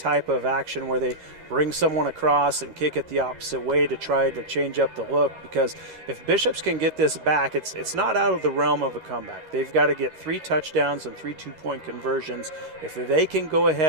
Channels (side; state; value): left; late; 13 ms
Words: of action where they bring someone across and kick it the opposite way to try to change up the look, because if Bishops can get this back, it's not out of the realm of a comeback. They've got to get 3 touchdowns and 3 two-point conversions. If they can go